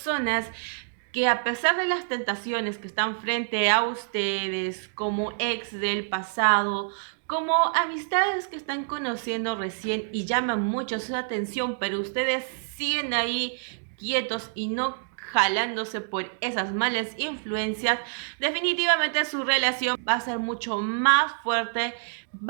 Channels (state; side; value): silent; left; digital silence